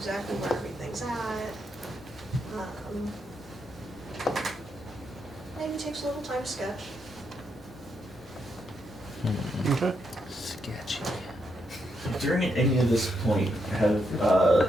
where everything's at. Maybe takes a little time to sketch. Okay. Sketchy. During any of this point, have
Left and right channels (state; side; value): normal; both; correlation 0.80